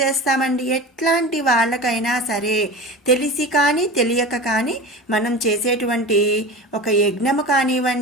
చేస్తామండి? ఎట్లాంటి వాళ్ళకైనా సరే తెలిసి కానీ తెలియక కానీ మనం చేసేటువంటి ఒక యజ్ఞము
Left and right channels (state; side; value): normal; both; correlation 0.32